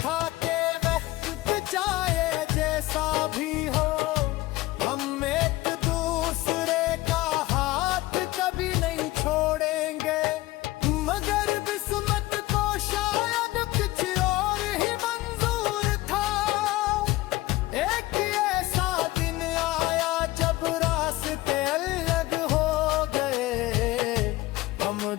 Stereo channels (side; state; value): right; quieter; 18.6 dB